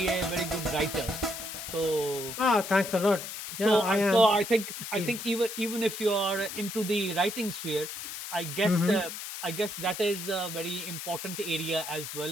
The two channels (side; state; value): left; noise; hiss, 8 dB below the sound